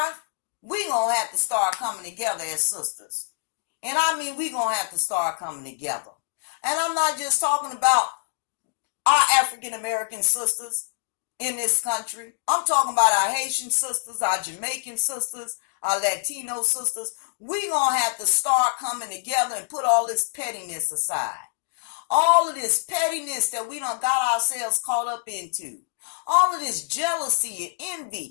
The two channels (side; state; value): right; silent; digital silence